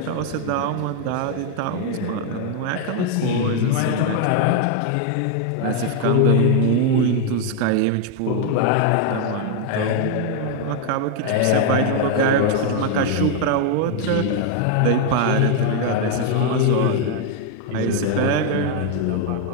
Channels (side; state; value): both; different; correlation 0.00